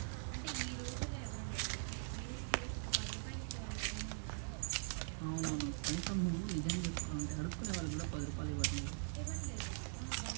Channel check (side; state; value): left; silent; digital silence